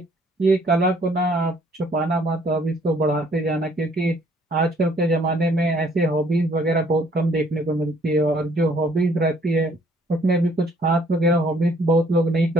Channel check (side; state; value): both; normal; correlation 0.62